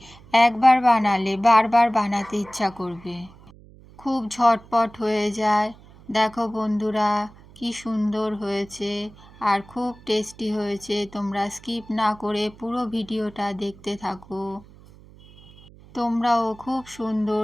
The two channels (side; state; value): right; noise; hum, 23 dB below the sound